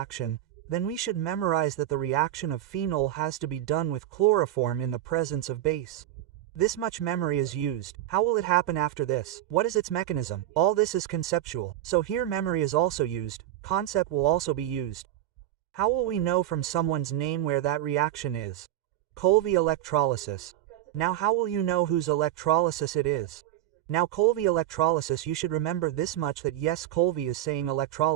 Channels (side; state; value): left; quieter; 13.2 dB